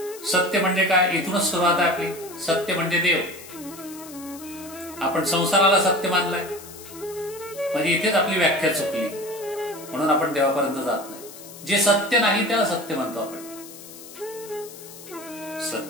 सत्य म्हणजे काय? इथूनच सुरुवात आहे आपली. सत्य म्हणजे देव. आपण संसाराला सत्य मानलाय म्हणजे इथेच आपली व्याख्या चुकली, म्हणून आपण देवापर्यंत जात नाही. जे सत्य नाही त्याला सत्य म्हणतो आपण.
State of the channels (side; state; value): left; noise; hiss, 16 dB below the sound